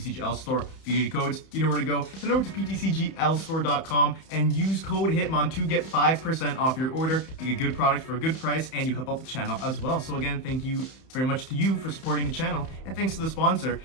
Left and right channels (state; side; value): late; right; 31 ms